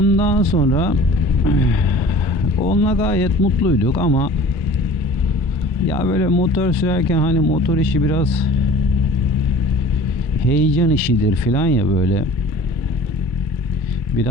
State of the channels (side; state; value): both; normal; correlation 0.44